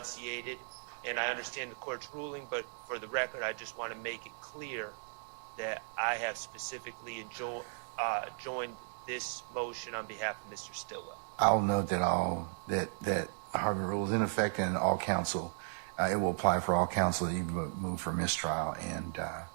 and I understand the court's ruling, but for the record, I just want to make it clear that I have specifically joined this motion on behalf of Mr. Stillwell. I'll note that Harvey rule is in effect and all counsel. It will apply for all counsel that you move for mistrial, and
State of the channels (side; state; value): left; silent; digital silence